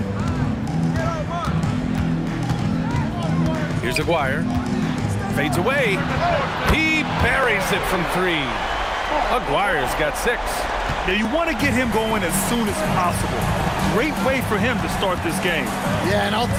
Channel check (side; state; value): both; identical; correlation 1.00